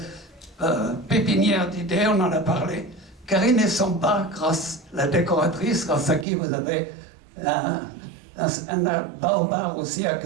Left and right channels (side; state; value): left; drops out; at 6.2 s